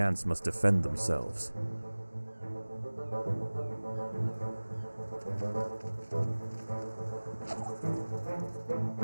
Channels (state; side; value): inverted; both; correlation -1.00